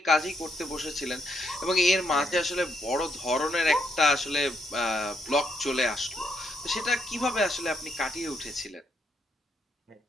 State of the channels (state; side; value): normal; both; correlation 0.76